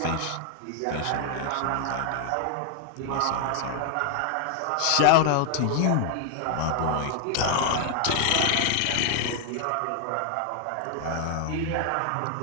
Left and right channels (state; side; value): different; both; correlation 0.00